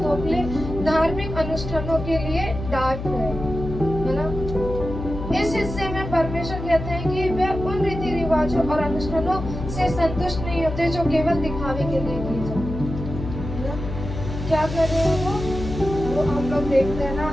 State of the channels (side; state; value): left; noise; hum, 7 dB below the sound